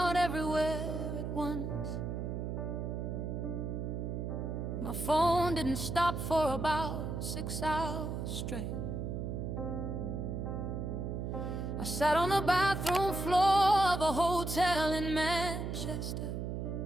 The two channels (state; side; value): noise; right; hum, 3 dB below the sound